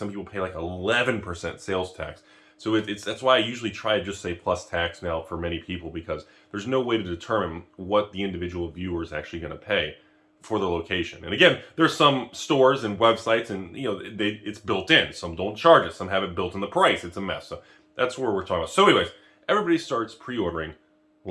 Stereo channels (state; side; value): identical; both; correlation 1.00